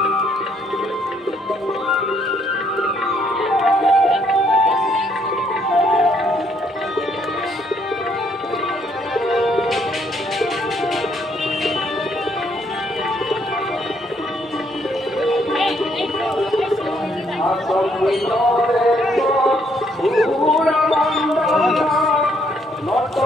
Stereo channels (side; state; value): both; normal; correlation 0.69